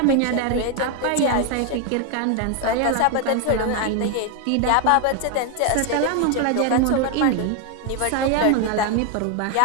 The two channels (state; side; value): different; both; correlation 0.01